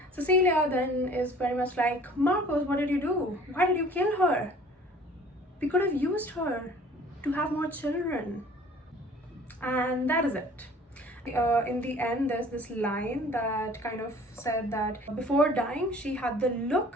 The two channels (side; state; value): both; normal; correlation 0.50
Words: Cecilia then is very much like, Marcos, what did you do? Why did you kill her? We could have used her to have more children. And that is it. In the end, there's this line that kind of said that before dying, she had